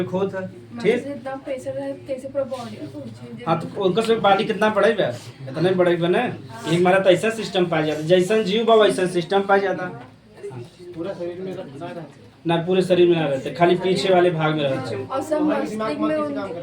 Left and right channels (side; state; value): both; identical; correlation 1.00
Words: खोत है ठीक इतना प्रेशर है कैसे पूरा बॉडी हाँ तो उनका सब पानी कितना बढ़ेगा इतना ही बढ़ेगा ना एक मारा तो ऐसा सिस्टम पाया जाता जैसा जीव बा वैसा सिस्टम पाया जाता पूरा शरीर में रहता ना पूरे शरीर में ना रहते खाली पीछे वाले भाग में रहते और सब मस्तिष्क